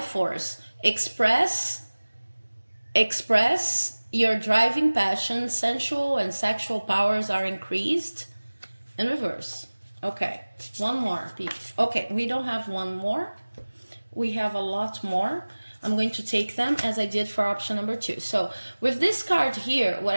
force. Express your driving passion, sensual and sexual powers are increased. In reverse. Okay, one more. Okay, we don't have one more. We have a lot more. I'm going to take them as I did for option number 2. So with this card here, what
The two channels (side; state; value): both; inverted; correlation -1.00